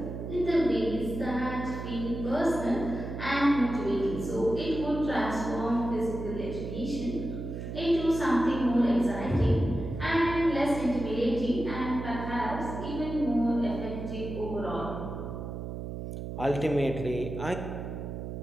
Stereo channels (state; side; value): noise; right; hum, 7 dB below the sound